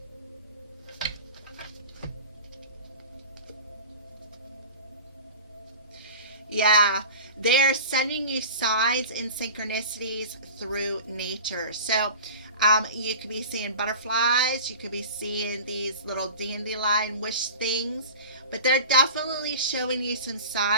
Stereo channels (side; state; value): both; inverted; correlation -0.36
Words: Yeah, they're sending you signs and synchronicities through nature. So you could be seeing butterflies, you could be seeing these little dandelion wish things, but they're definitely showing you some